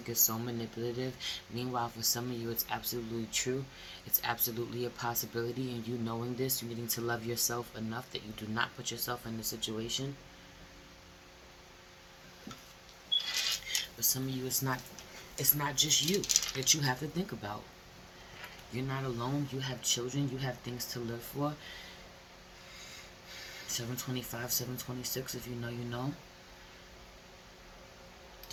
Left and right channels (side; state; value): both; identical; correlation 1.00